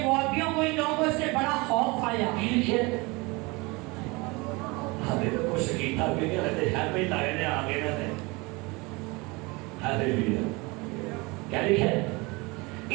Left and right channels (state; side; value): quieter; left; 25.5 dB